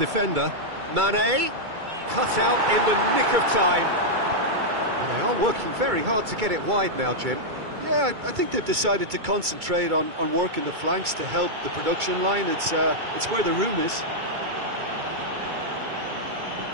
Mane cut out in the nick of time. And they are working very hard to get it wide now, Jim. Yeah, I think they've decided to concentrate on working the flanks to help the production line. It's where the room is.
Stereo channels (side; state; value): left; late; 2.3 ms